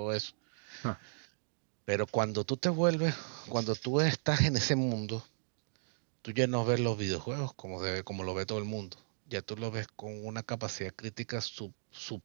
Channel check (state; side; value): silent; left; digital silence